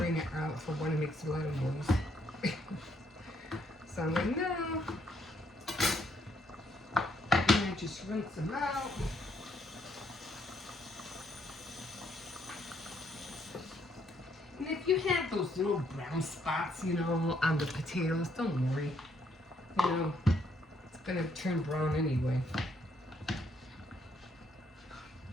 out for one, it makes a lot of noise. So I'm like, no. And I just rinse them out. And if you have those little brown spots, you know, on the potatoes, don't worry. You know, it's gonna turn brown anyway.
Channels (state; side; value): normal; both; correlation 0.72